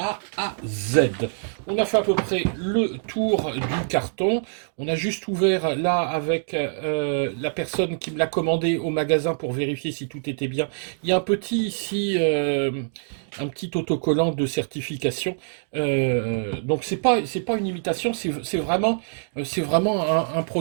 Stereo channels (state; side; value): silent; left; digital silence